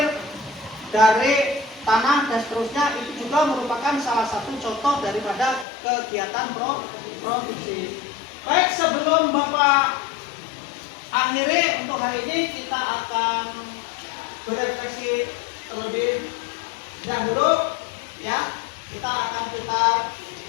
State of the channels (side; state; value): right; drops out; at 5.7 s